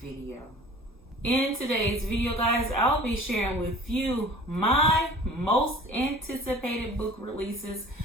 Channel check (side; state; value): both; normal; correlation 0.44